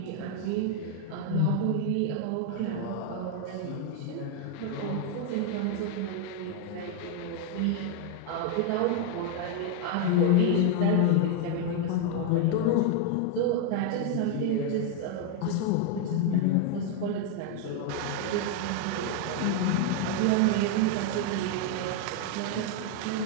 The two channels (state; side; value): different; both; correlation 0.01